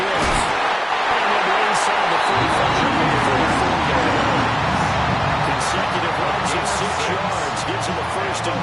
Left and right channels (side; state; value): both; identical; correlation 1.00